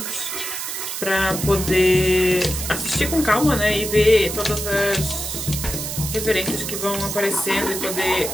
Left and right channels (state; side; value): noise; right; hiss, 5 dB below the sound